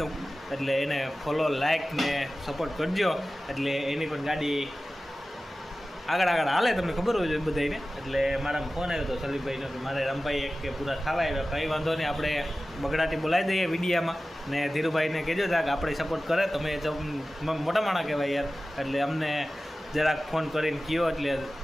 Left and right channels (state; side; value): normal; both; correlation 0.96